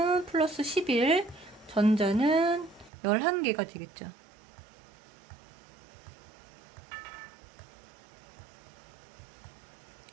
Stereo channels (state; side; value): drops out; left; at 2.9 s